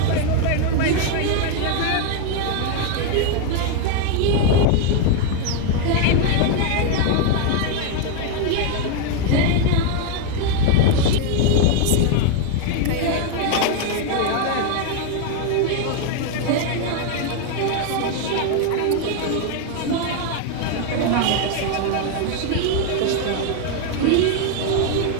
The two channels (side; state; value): both; different; correlation 0.01